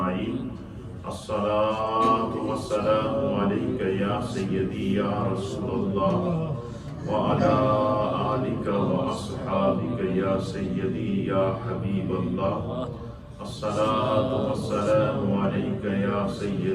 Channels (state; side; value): identical; both; correlation 1.00